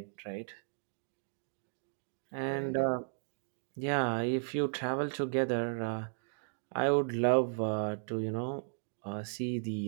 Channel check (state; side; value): silent; left; digital silence